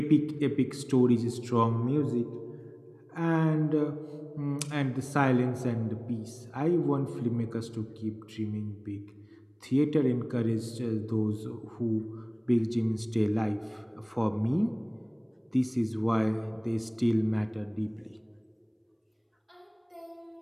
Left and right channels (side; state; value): both; identical; correlation 1.00